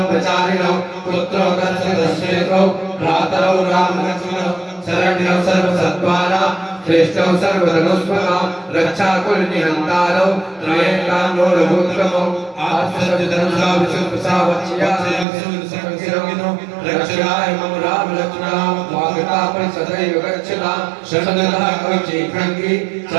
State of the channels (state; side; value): drops out; left; at 15.2 s